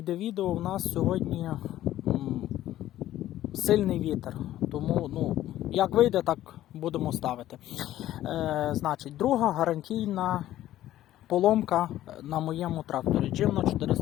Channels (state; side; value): quieter; right; 13.6 dB